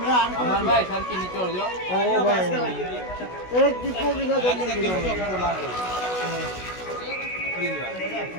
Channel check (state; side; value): late; right; 16 ms